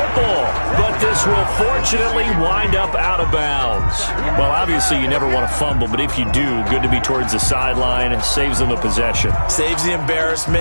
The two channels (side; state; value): both; inverted; correlation -1.00